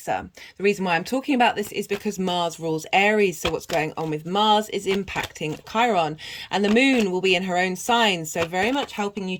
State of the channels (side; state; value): both; identical; correlation 1.00